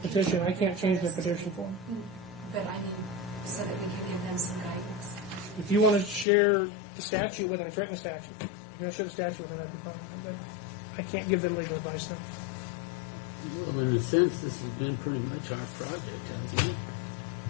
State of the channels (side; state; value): right; drops out; at 6.2 s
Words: I can't change their petition form. but I mean, so that we can give them some guidance. If you want to share the statute with them, it's right in the statute. If you want to share the statute with them, that'd be fine. But I can't give them legal advice now. Well, in a sense, this has been pretty much our project, hasn't it?